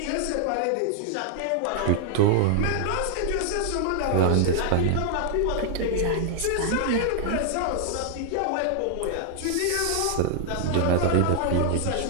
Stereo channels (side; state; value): both; different; correlation -0.01